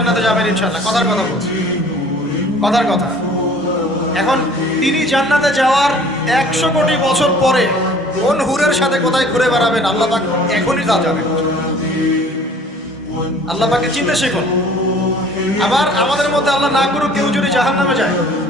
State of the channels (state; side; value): normal; both; correlation 0.51